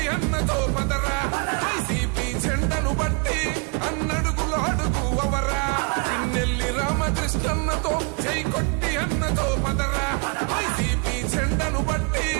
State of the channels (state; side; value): quieter; left; 34.9 dB